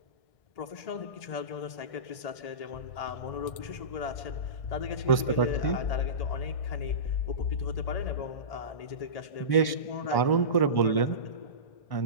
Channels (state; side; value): late; right; 1.1 ms